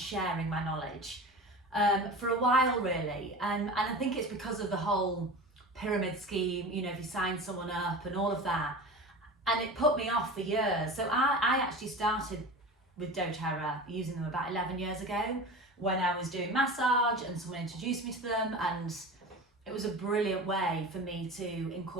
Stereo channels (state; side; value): normal; both; correlation 0.33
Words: my knowledge, for a while really. And I think it's because of the whole pyramid scheme, you know, if you sign someone up and all of that. And it put me off for years. So I actually started with doTERRA, using them about 11 years ago when I was doing massage and someone introduced me to them, and it was a brilliant way for me to